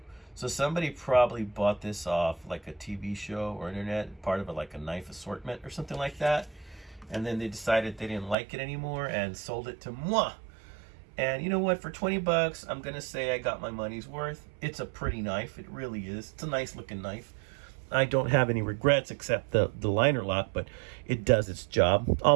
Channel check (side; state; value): left; drops out; at 8.3 s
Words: So somebody probably bought this off like a TV show or internet, part of like a knife assortment or something like that. And then they decided they didn't like it anymore and sold it to moi. And you know what? For 20 bucks, I'm going to say I got my money's worth. It's a pretty knife. It really is. It's a nice looking knife. I don't have any regrets except the liner lock, but it does its job.